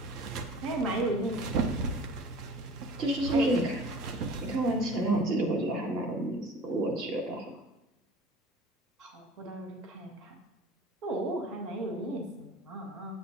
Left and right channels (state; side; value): normal; both; correlation 0.43